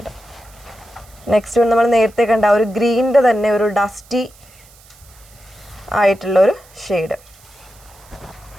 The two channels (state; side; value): noise; right; hiss, 26 dB below the sound